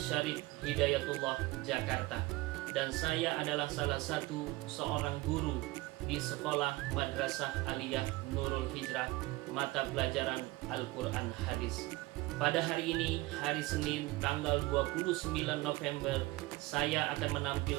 Hidayatullah Jakarta. Dan saya adalah salah satu seorang guru di Sekolah Madrasah Aliyah Nurul Hijrah mata pelajaran Al-Quran Hadis. Pada hari ini, hari Senin, tanggal 29 November, saya akan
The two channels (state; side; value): quieter; left; 20.3 dB